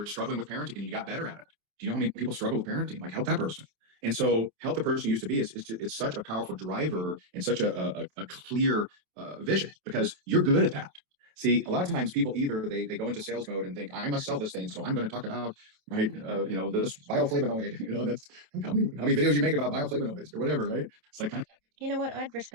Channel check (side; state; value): left; late; 27 ms